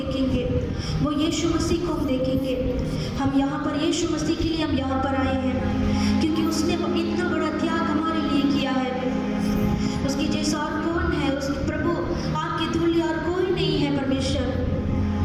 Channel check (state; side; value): identical; both; correlation 1.00